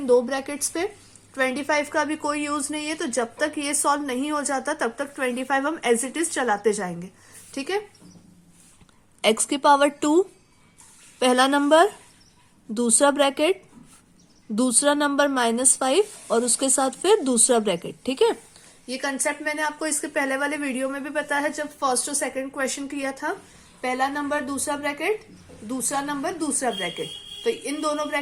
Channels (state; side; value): identical; both; correlation 1.00